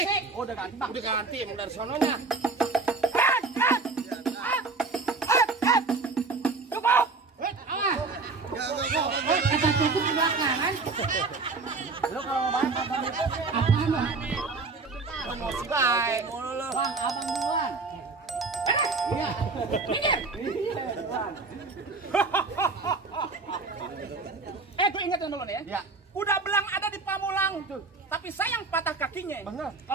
Oh, udah ganti bang. Udah ganti emang dari sononya. Cukup. Awas. Kata cukup di belakang kan? Lo kalau mau bahas apa nih? Apaan lo? Baik mulu lu. Bang, abang duluan. Iya. Mikir. Gue ingetin dulu nih ya. Ya. Udah belang ada di Pamulang tuh. Tapi sayang patah kakinya. Bener.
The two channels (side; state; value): left; quieter; 4.0 dB